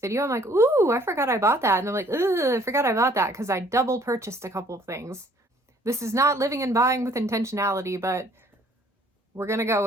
I'm like, ooh, I forgot I bought that, and I'm like, ugh, I forgot I bought that because I double purchased a couple of things. This is not living and buying with intentionality, but we're gonna go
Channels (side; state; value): both; normal; correlation 0.59